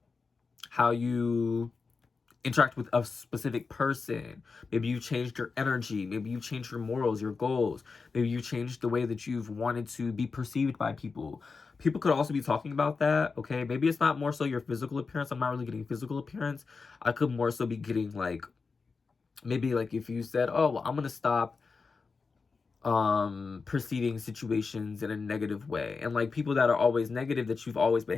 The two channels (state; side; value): quieter; right; 4.6 dB